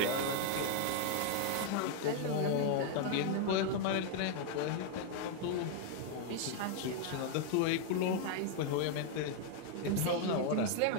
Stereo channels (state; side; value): different; both; correlation 0.00